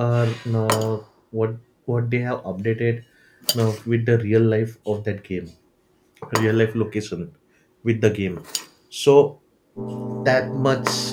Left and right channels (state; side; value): identical; both; correlation 1.00